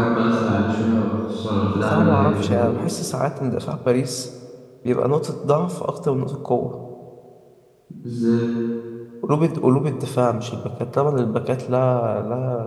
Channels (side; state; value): both; identical; correlation 1.00